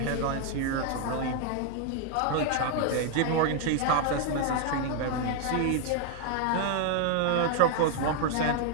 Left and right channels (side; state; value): both; different; correlation 0.00